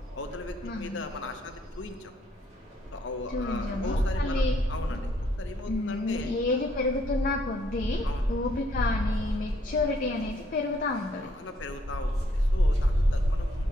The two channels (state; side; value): normal; both; correlation 0.68